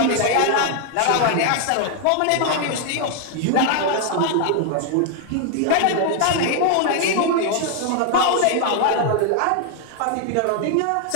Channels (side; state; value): both; different; correlation 0.00